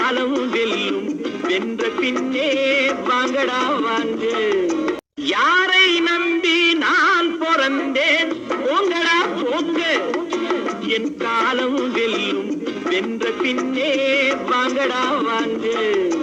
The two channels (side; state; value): both; identical; correlation 1.00